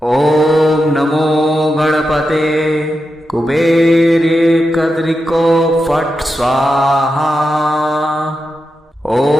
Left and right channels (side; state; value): both; normal; correlation 0.88